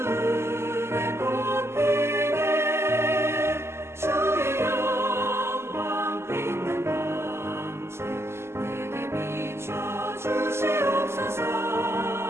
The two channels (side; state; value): left; late; 0.12 ms